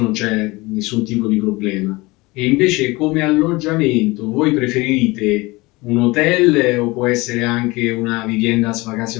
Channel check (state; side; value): quieter; right; 22.7 dB